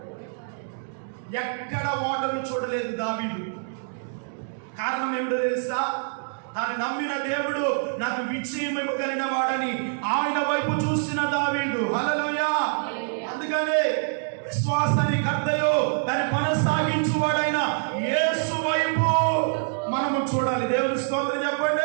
ఎక్కడ ఓటమి చూడలేదు దావీదు. కారణం ఏమిటో తెలుసా? తాను నమ్మిన దేవుడు నాకు విజయం ఇవ్వగలిగిన వాడని ఆయన వైపు చూసిన దావీదు. హల్లెలూయా. అందుకనే విశ్వాసాన్ని కర్తయో దాన్ని కొనసాగించువాడైన యేసు వైపు మనము చూడాలి. దేవుని స్తోత్రం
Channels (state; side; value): silent; left; digital silence